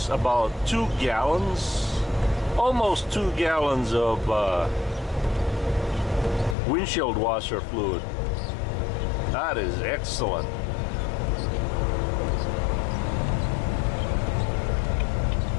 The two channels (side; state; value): right; drops out; at 6.6 s